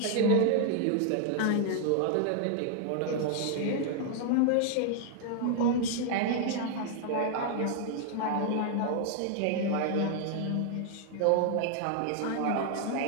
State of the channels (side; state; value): both; different; correlation 0.00